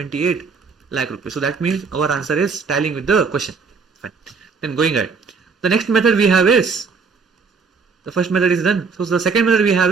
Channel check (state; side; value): quieter; left; 5.0 dB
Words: lakh rupees. So that means our answer is tallying with the question. Fine. Then going ahead, the next method we have is, the first method is done. So the second method we have